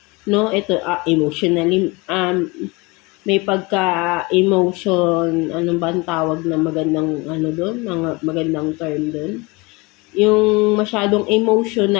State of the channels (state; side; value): quieter; right; 25.6 dB